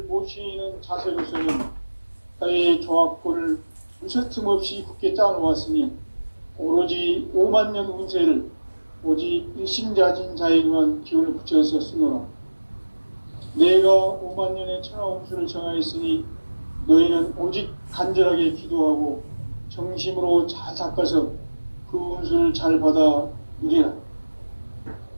모시는 자세로서는 나의 조화권을 무쇠틈 없이 굳게 짜놓았으니 오로지 5만 년 운세를 오직 일심자진 자에게만 기운을 붙여서 쓰노라. 내가 5만 년의 천하 운수를 정하였으니 너희는 오직 간절하게 기도하고 정심으로 잘 닦아서 그 운수를 잘 받아 누리라.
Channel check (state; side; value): inverted; both; correlation -1.00